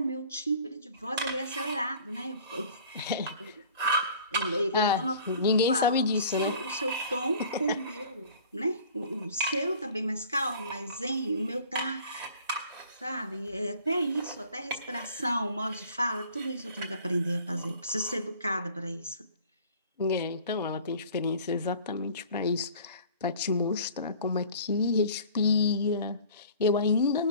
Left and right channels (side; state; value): both; inverted; correlation -0.48